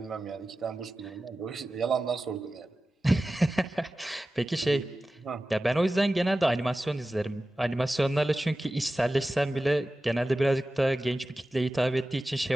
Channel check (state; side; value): normal; both; correlation 0.95